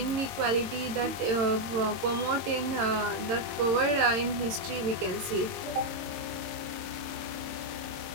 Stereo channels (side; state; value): left; late; 22 ms